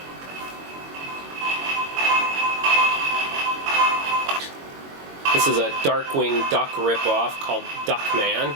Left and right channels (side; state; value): left; late; 22 ms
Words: This is a Darkwing Duck ripoff called Duckman.